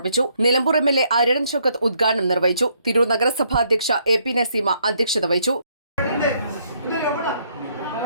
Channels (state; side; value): inverted; both; correlation -0.70